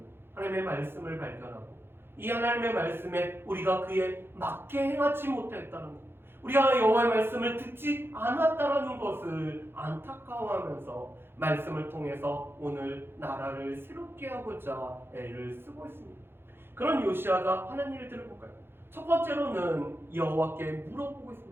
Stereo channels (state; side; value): late; left; 0.11 ms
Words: 하나님의 말씀을 발견하고 이 하나님의 말씀에 우리가 그에 맞게 행하지 못했다는 것, 우리가 여호와의 말씀을 듣지 않았다는 것을 안타까워하면서 말씀을 통해서 오늘 나라를 새롭게 하고자 애를 쓰고 있습니다. 그런 요시야가 하는 일들을 볼까요? 첫 번째로는 여호와께 물어보고